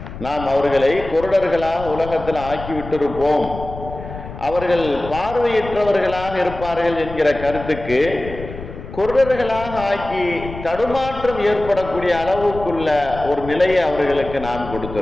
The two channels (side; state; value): left; noise; rumble, 12 dB below the sound